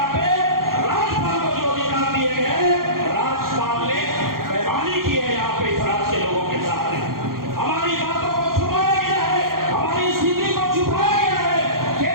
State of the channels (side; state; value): left; late; 0.92 ms